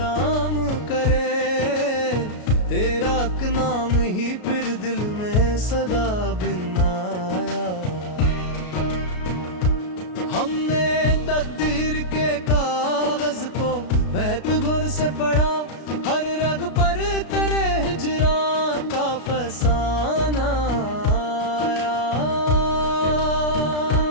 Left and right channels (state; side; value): late; right; 33 ms